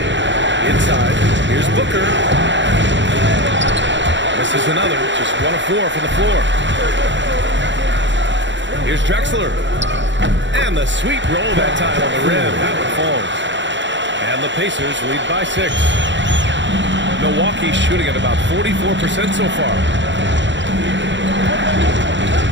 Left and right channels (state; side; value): late; left; 0.53 ms